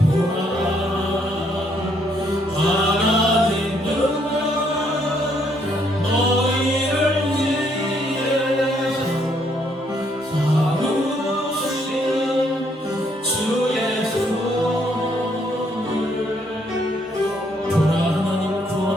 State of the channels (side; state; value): both; normal; correlation 0.70